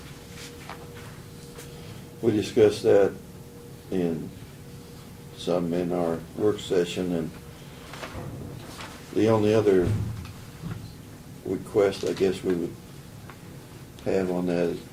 We discussed that in our work session, and the only other request I guess we would have on that is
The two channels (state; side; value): identical; both; correlation 1.00